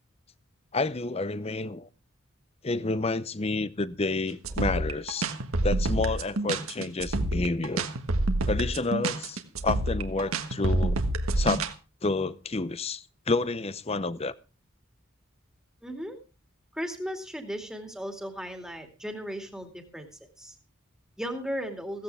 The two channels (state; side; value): normal; both; correlation 0.55